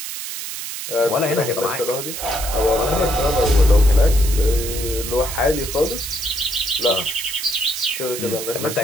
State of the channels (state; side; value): noise; right; hiss, 7 dB below the sound